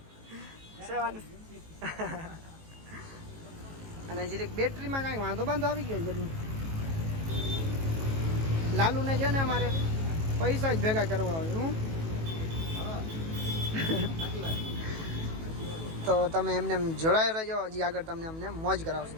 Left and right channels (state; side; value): late; left; 18 ms